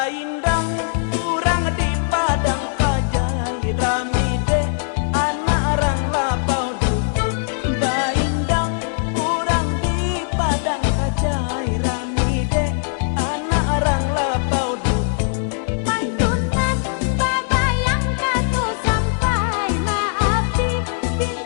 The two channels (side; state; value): right; silent; 66 dB below the other